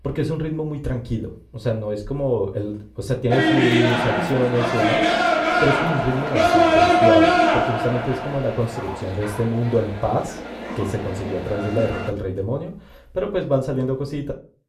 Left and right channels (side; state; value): both; identical; correlation 1.00